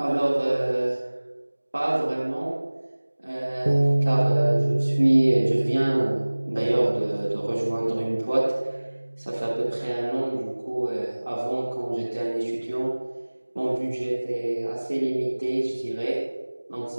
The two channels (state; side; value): inverted; both; correlation -1.00